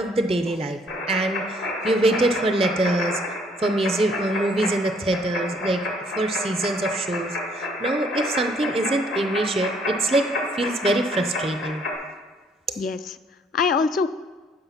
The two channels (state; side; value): normal; both; correlation 0.64